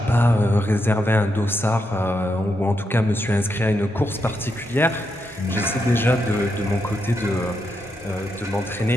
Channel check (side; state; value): both; normal; correlation 0.83